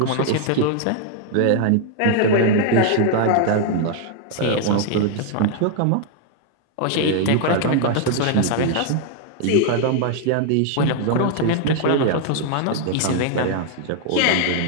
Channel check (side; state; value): both; different; correlation 0.00